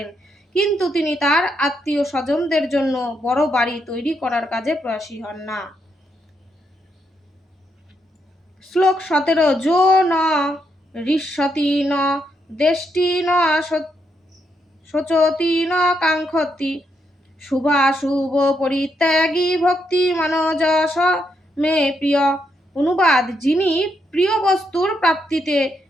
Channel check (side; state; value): both; normal; correlation 0.79